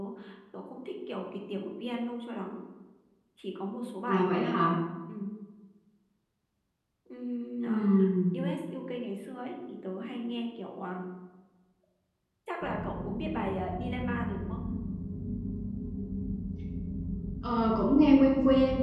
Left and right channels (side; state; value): both; identical; correlation 1.00